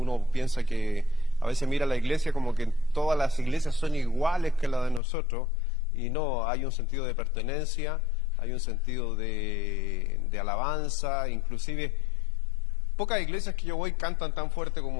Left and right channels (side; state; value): right; drops out; at 5.0 s